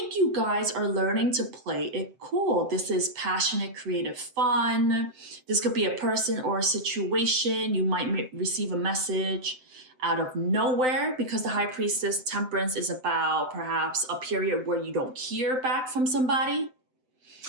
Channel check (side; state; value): left; late; 7.8 ms